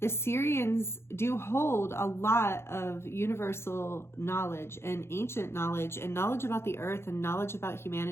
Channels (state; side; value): late; right; 0.12 ms